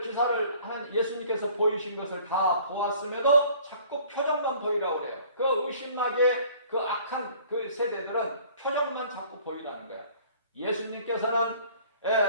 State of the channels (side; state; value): both; inverted; correlation -0.53